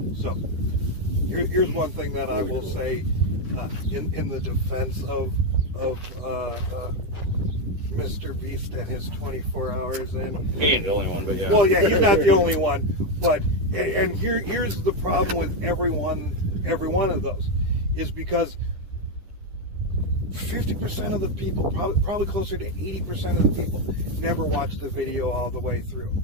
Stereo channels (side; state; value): left; late; 10 ms